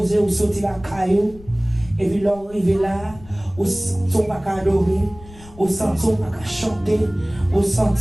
ou sortir la caillou, et puis l'on arrive là, ou sont pas qu'à adorer, ou sentir pas qu'à chanter, ou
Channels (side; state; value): left; noise; rumble, 20 dB below the sound